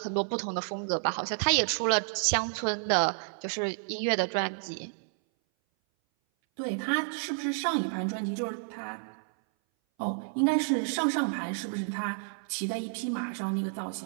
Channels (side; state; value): left; silent; 58 dB below the other